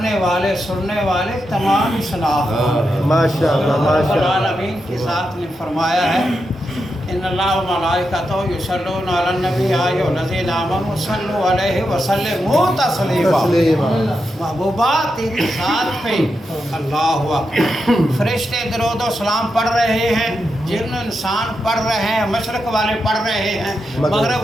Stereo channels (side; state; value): both; normal; correlation 0.86